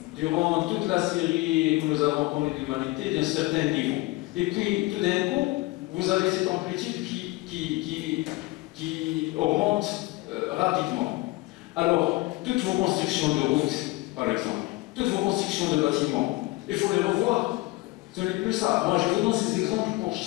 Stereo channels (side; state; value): right; quieter; 21.2 dB